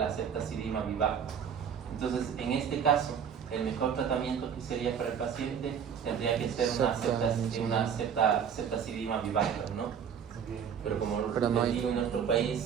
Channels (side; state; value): left; quieter; 7.7 dB